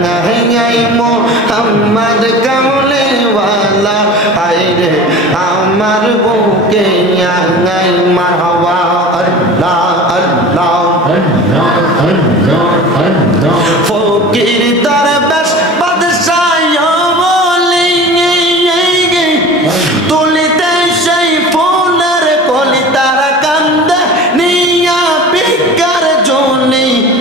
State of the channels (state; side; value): normal; both; correlation 0.37